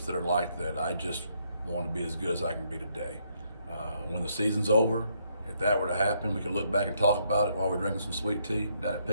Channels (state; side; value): inverted; both; correlation -0.73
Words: that are like that. I just want to be as good as I can be today. When the season's over, if that were to happen, we could look back and talk about it while we're drinking some sweet tea down at